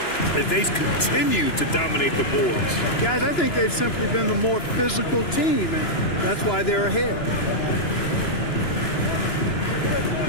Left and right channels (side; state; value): right; late; 2.9 ms